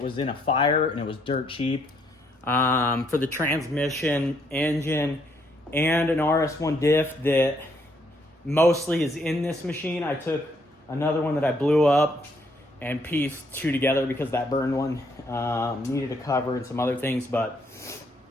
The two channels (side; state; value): both; normal; correlation 0.70